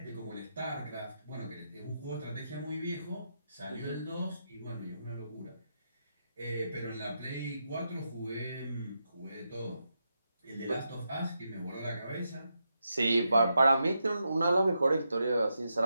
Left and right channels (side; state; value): both; inverted; correlation -0.84